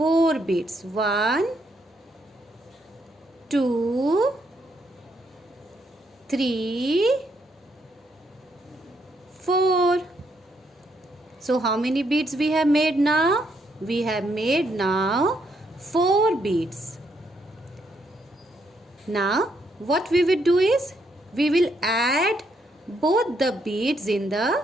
beads. 1 2 3 4. So how many beads we have made now? We have made now 4 beads. Now what we will do is, we will add both the beads in the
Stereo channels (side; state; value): both; normal; correlation 0.75